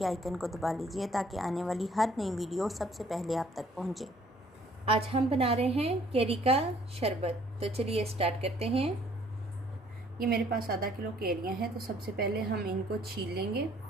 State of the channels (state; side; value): normal; both; correlation 0.60